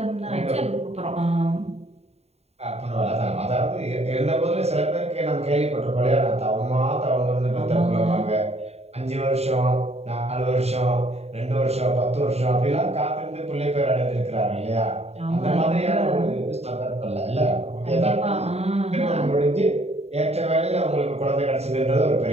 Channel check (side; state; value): left; late; 0.30 ms